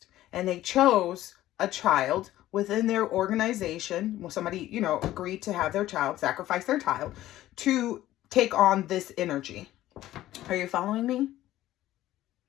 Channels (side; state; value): right; quieter; 14.5 dB